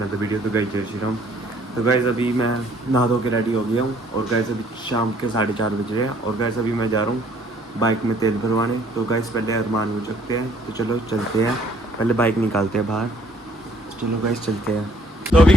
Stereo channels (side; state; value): both; normal; correlation 0.62